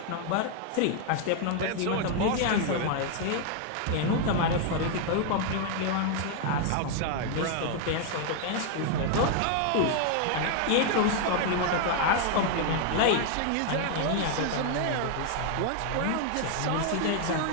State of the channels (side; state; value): both; different; correlation 0.00